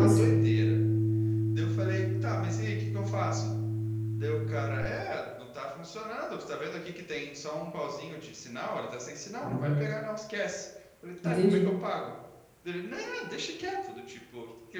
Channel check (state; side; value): identical; both; correlation 1.00